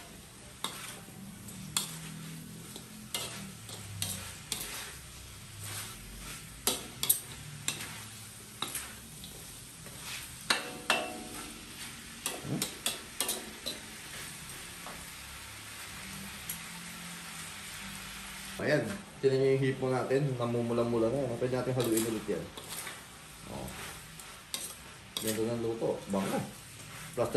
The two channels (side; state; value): both; identical; correlation 1.00